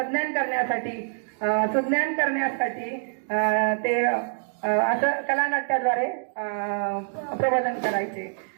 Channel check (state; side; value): silent; left; digital silence